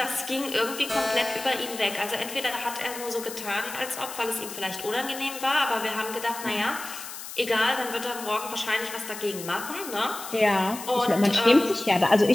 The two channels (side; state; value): left; noise; hiss, 11 dB below the sound